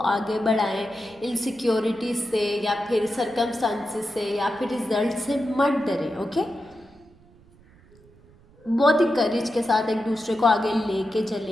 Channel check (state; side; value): noise; right; rumble, 27 dB below the sound